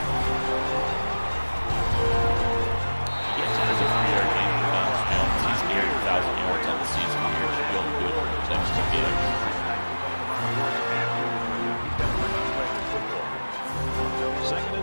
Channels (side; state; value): both; inverted; correlation -1.00